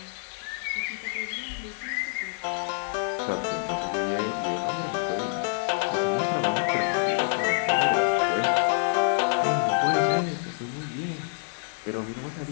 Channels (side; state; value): right; silent; digital silence